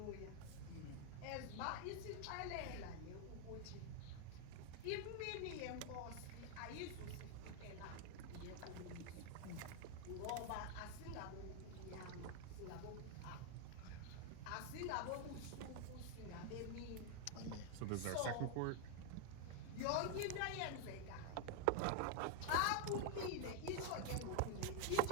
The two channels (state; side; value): different; both; correlation 0.00